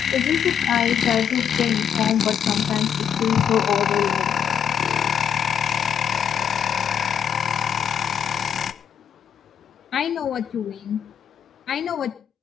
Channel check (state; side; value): quieter; right; 8.3 dB